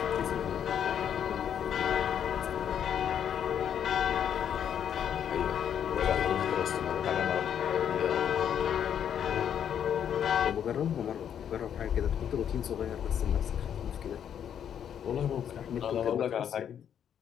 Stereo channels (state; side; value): quieter; right; 8.9 dB